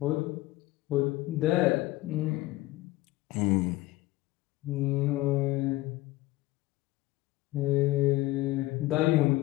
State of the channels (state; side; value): quieter; right; 18.2 dB